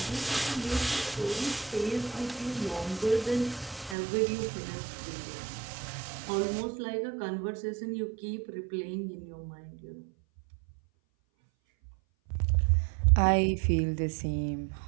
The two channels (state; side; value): drops out; left; at 4.0 s